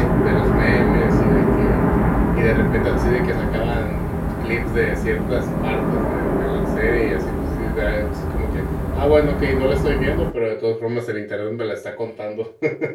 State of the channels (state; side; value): identical; both; correlation 1.00